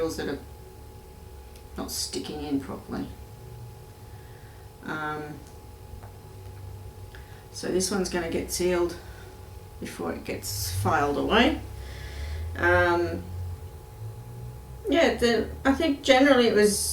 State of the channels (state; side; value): identical; both; correlation 1.00